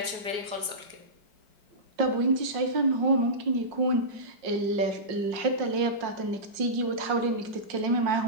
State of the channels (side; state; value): left; late; 4.8 ms